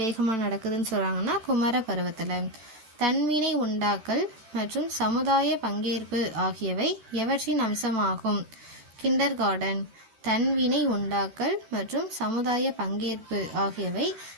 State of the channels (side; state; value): left; late; 13 ms